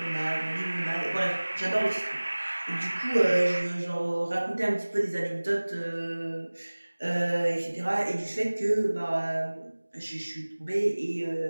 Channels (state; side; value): inverted; both; correlation -1.00